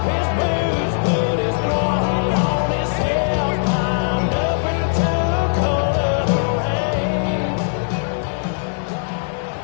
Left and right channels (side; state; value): right; silent; digital silence